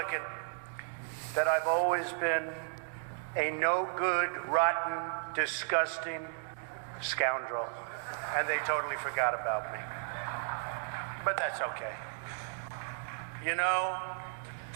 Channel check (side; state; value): left; silent; digital silence